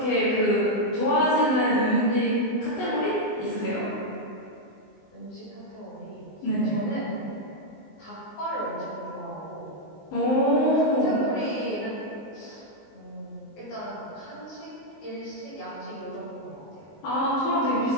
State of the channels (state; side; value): late; right; 19 ms